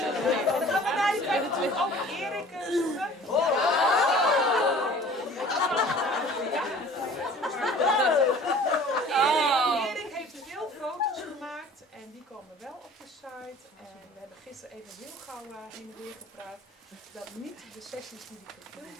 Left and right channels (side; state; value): both; normal; correlation 0.47